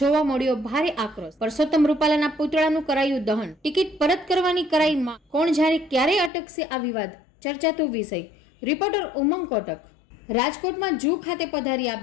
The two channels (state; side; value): drops out; right; at 6.3 s